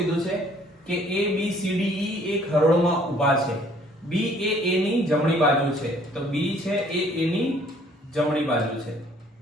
છે કે A B C D E એક હરોળમાં ઊભા છે. B એ A ની જમણી બાજુ છે, તો B છે એ A ની જમણી બાજુ છે.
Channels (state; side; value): normal; both; correlation 0.59